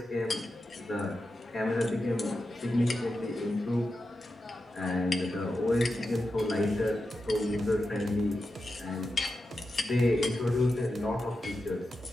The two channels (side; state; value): both; normal; correlation 0.90